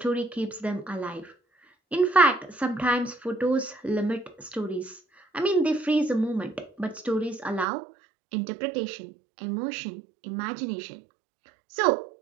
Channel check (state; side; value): drops out; left; at 7.7 s